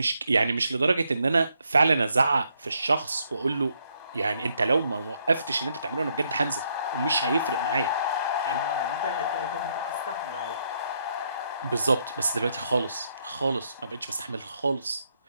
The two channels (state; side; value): inverted; both; correlation -0.75